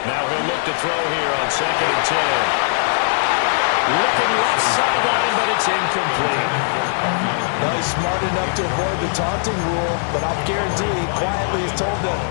Now he'll look to throw here on 2nd and 10. Looking left sideline, but it's incomplete. Well, he's smart enough to avoid the taunting rule, but I'll guarantee quietly is told them,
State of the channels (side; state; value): right; silent; 61 dB below the other